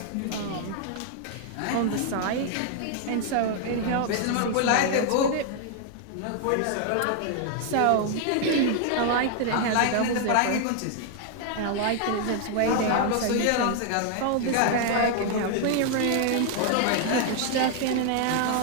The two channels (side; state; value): both; different; correlation 0.00